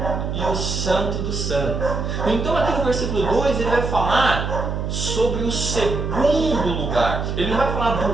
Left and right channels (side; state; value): right; noise; hum, 3 dB below the sound